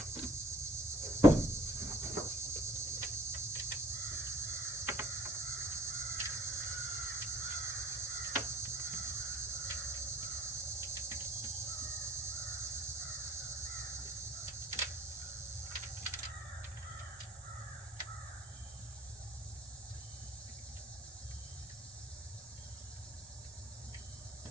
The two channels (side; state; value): both; normal; correlation 0.53